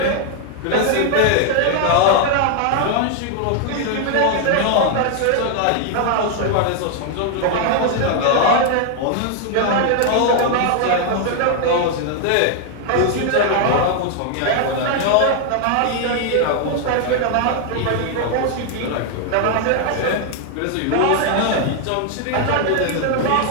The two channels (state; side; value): different; both; correlation 0.00